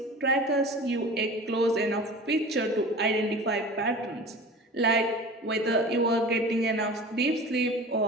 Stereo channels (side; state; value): both; normal; correlation 0.37